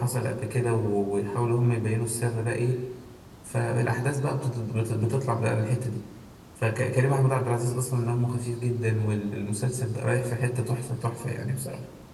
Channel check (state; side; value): identical; both; correlation 1.00